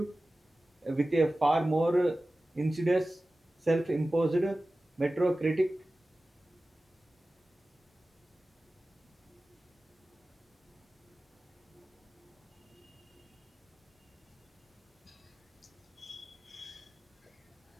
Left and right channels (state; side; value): normal; both; correlation 0.96